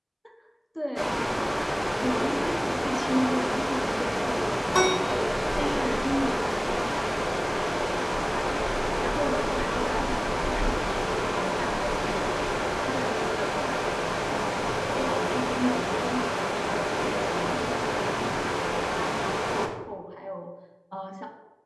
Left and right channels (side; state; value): both; identical; correlation 1.00